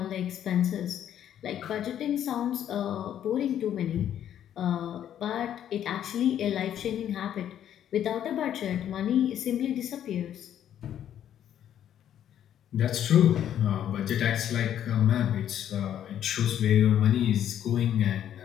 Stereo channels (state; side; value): quieter; right; 10.4 dB